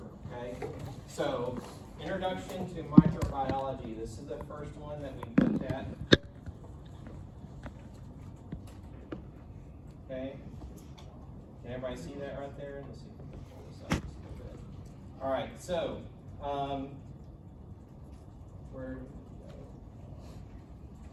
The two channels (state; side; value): identical; both; correlation 1.00